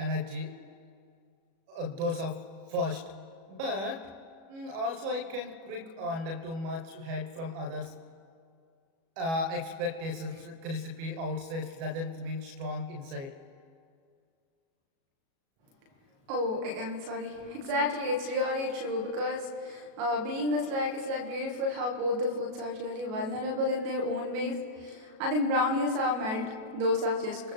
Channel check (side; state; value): left; late; 37 ms